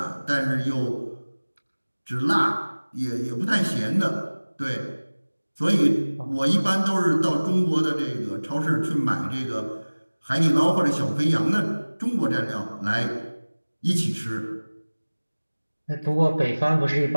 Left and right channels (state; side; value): inverted; both; correlation -1.00